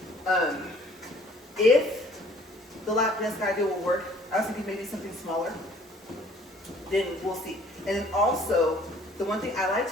if the lap desk idea will work, I was thinking maybe something smaller, then we'll see. And then also the one thing, I like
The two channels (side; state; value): both; normal; correlation 0.56